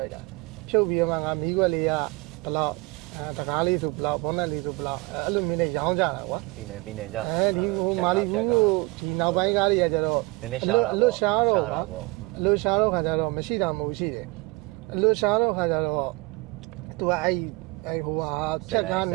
ုက်တာဖြုတ်ပြီးတော့မှငါမီးခွက်လေးကဘလောက်တကားလေးဆိုဘလောက်ဘောနက်လေးဆိုဘလောက်အဲ့လိုမျိုးနဲ့ရောင်းကြတာကွာ ပြည်နယ်ကြ ဒီဟိုမာလီဘူးကိုဒီနောက်ပိုင်းကားတွေကကျတော့ နည်းနည်းရှားတာ အလွတ်ရှားတော့ ပေါ့ အလွတ်ရှားတော့ခါကျတော့မရှိတာမဟုတ်ရှိတယ်အလွတ်ရှားတော့ခါကျတော့သူကအဲ့ဟိုဟာချက်ကားန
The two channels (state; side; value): quieter; left; 25.1 dB